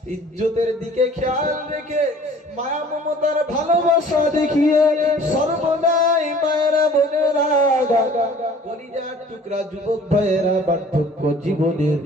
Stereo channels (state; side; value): normal; both; correlation 0.50